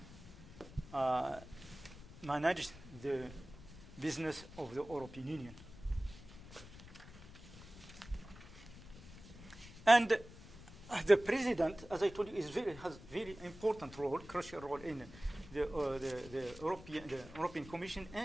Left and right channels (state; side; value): noise; left; rumble, 17 dB below the sound